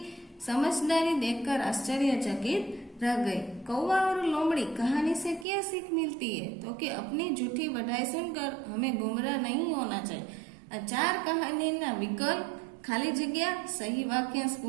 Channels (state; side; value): drops out; left; at 5.5 s